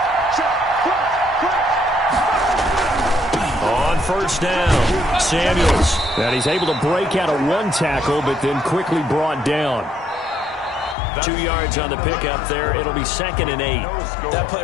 On 1st down, Samuels. And he's able to break out of one tackle, but then quickly brought down. 2 yards on the pickup there. It'll be 2nd and 8. That play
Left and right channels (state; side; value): drops out; right; at 11.0 s